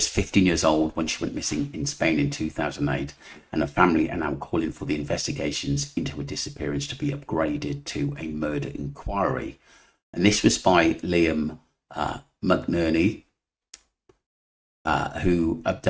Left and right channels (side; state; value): both; identical; correlation 1.00